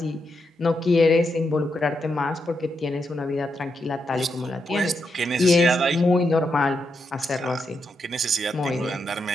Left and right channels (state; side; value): normal; both; correlation 0.83